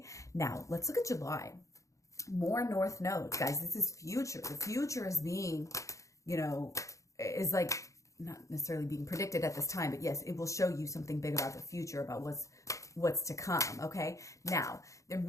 now let's look at July. More North Nodes, guys. This is future. The future is being, you know, is like not necessarily being predicted at this time, but yes, it will show you something big about the future, about what's to come. Okay, now there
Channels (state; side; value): late; right; 0.15 ms